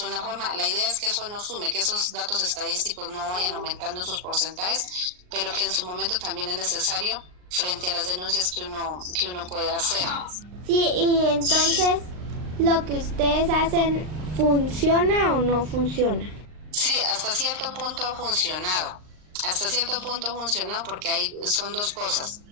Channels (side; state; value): left; late; 39 ms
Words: forma. La idea es que eso no sume, que esos datos estadísticos no vayan aumentando en sus porcentajes, pero que en su momento también es necesario frente a las denuncias que uno puede hacer. Sí, y entonces, ¿lo que ustedes hacen funciona o no funciona? Sí, hasta cierto punto ha funcionado. Porque son dos cosas.